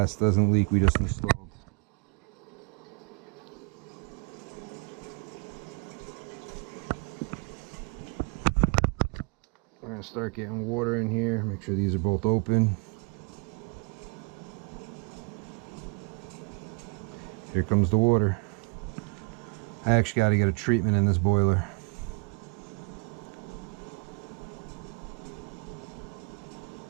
doesn't leak. We just installed. We're gonna start getting water in here. Make sure these are both open. Here comes the water. I actually got to get a treatment in this boiler.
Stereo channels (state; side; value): quieter; left; 33.2 dB